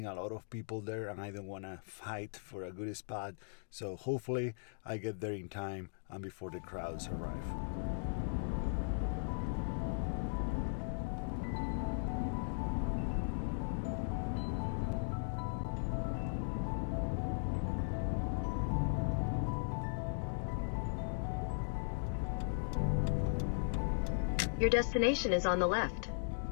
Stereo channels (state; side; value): silent; right; digital silence